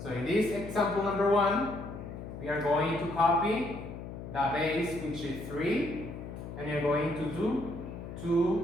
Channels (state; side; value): noise; left; hum, 10 dB below the sound